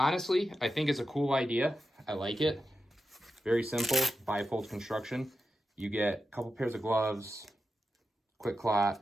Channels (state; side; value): normal; both; correlation 0.90